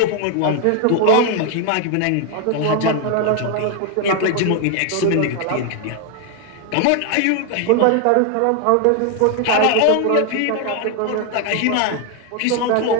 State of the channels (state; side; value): different; both; correlation 0.00